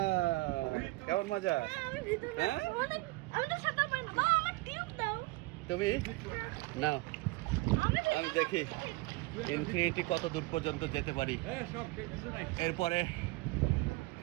কেমন মজা? হ্যাঁ তুমি নাও, আমি দেখি ইনফিনিটি কত দূর পর্যন্ত যেতে পারি।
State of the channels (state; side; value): quieter; left; 22.5 dB